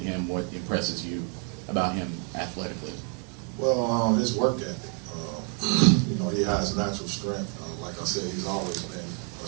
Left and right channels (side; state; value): left; quieter; 38.6 dB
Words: what impresses you about him athletically? Well, his work ethic. He has natural strength. Like I said, he's always been a